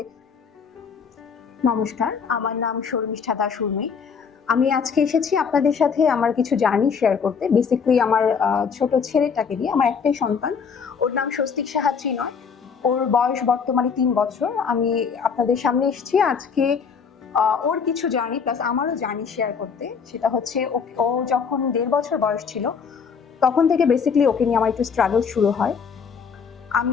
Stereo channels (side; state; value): right; quieter; 6.2 dB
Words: নমস্কার, আমার নাম শর্মিষ্ঠা দাস উর্মি। আমি আজকে এসেছি আপনাদের সাথে আমার কিছু জার্নি শেয়ার করতে। বেসিক্যালি আমার ছোট ছেলেটাকে নিয়ে, আমার একটাই সন্তান। ওর নাম স্বস্তিক সাহা ত্রিনয়। ওর বয়স বর্তমানে ৩ বছর। আমি আপনাদের সামনে এসেছি আজকে ওর কিছু জার্নি প্লাস আমারও জার্নি শেয়ার করতে। সেটা হচ্ছে ও যখন ১.৫ বছর বয়স ছিল তখন থেকে বেসিক্যালি ওকে নিয়ে আমার একটু স্ট্রাগল শুরু হয়।